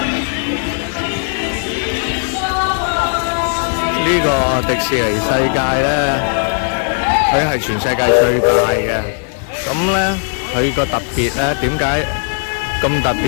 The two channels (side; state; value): right; silent; digital silence